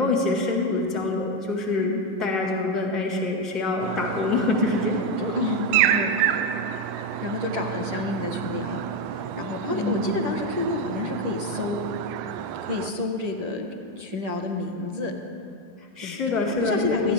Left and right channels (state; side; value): late; left; 10 ms